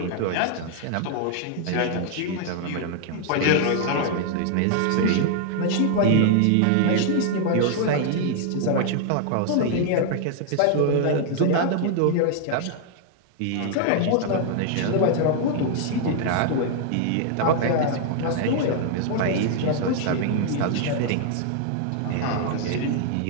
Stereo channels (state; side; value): different; both; correlation 0.00